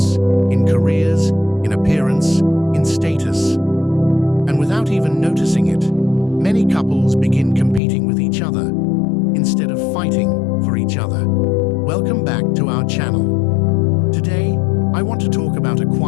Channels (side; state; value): right; drops out; at 7.8 s